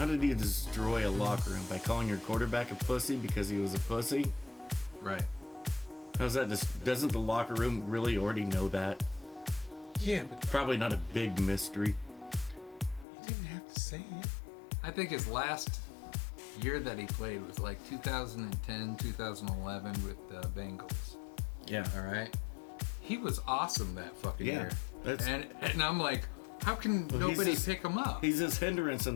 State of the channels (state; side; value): drops out; right; at 13.1 s